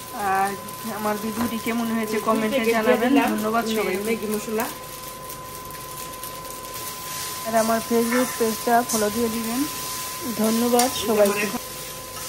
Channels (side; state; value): both; identical; correlation 1.00